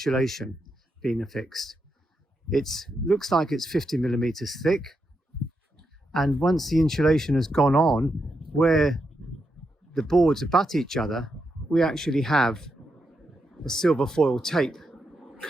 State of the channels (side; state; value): both; normal; correlation 0.84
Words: being affixed. It looks like it's 50 millimeters thick. And once the insulation has gone on, where the boards abut each other, we actually have a silver foil tape